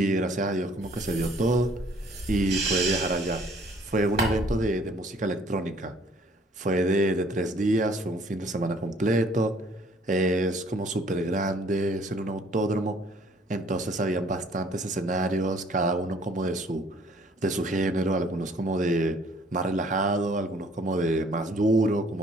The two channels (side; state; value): both; normal; correlation 0.58